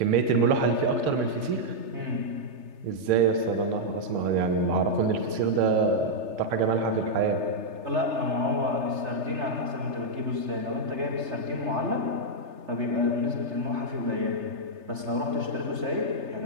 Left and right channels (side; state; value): left; late; 3.3 ms